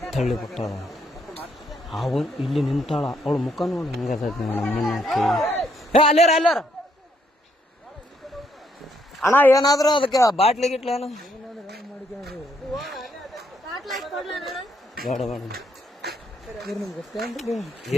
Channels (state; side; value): normal; both; correlation 0.73